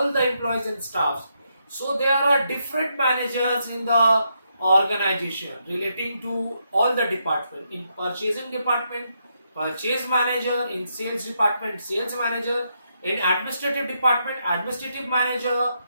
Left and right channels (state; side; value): inverted; both; correlation -0.80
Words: the employees and staffs. So there are different managers in the organization relating to all the department. In purchasing department, purchase manager; in sales department, sales manager; in administrative department, administrative manager;